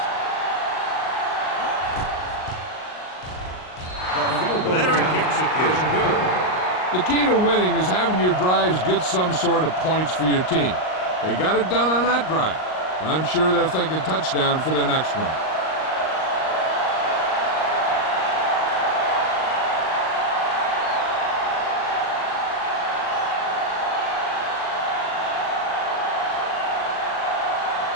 Veteran kicks it good. The key to winning is having your drives get some sort of points for your team. They got it done on that drive. I'm sure they're thinking touchdown for their next one.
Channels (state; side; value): late; right; 38 ms